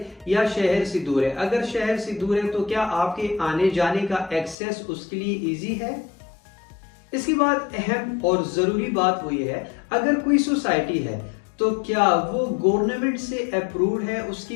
या शहर से दूर है। अगर शहर से दूर है तो क्या आपके आने जाने का एक्सेस उसके लिए ईजी है। इसके बाद अहम और जरूरी बात वो ये है, अगर कोई सोसाइटी है तो क्या वो गवर्नमेंट से अप्रूव्ड है, उसकी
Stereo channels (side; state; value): right; drops out; at 4.5 s